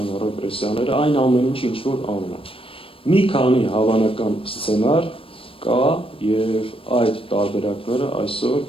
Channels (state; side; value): late; right; 0.26 ms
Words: ռեպրեսիաները, այն ամեն ինչ ինչ որ անում են։ Մի քանի հավանական սցենար կա եւ այդ տարբերակները այսօր